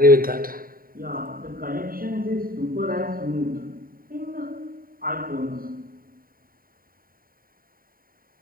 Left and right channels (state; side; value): late; left; 0.42 ms